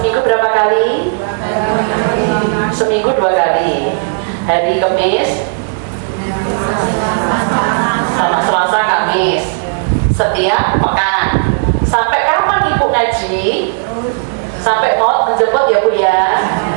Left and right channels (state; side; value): silent; left; digital silence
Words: berapa kali? Seminggu 2 kali. Hari Kamis sama Selasa Kamis. Setiap pekan. Sampai kapan Ibu ngaji? Sampai mau menjemput ya Bu ya.